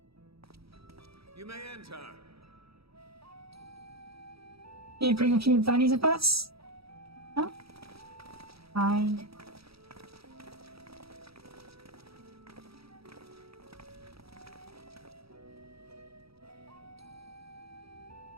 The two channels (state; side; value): late; left; 0.77 ms